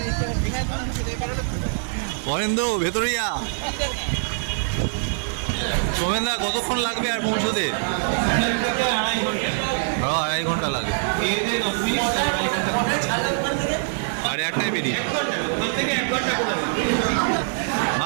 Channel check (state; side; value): silent; left; digital silence